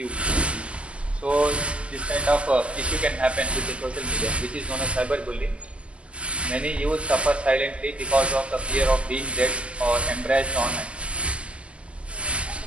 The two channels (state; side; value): late; left; 0.057 ms